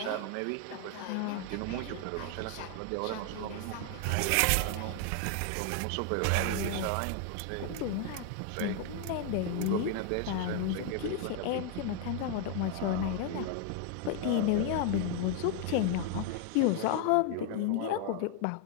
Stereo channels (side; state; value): both; different; correlation 0.00